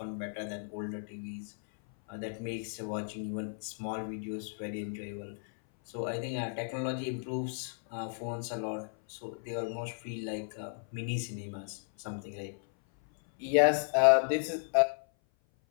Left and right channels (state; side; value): silent; right; 55 dB below the other